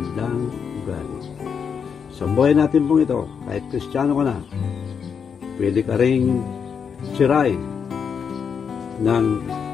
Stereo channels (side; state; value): right; quieter; 6.7 dB